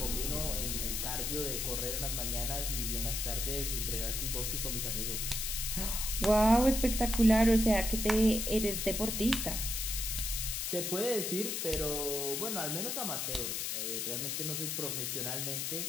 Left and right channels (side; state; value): left; noise; hiss, 1 dB below the sound